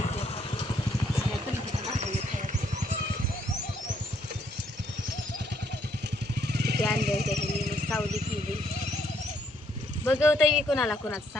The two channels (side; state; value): both; normal; correlation 0.70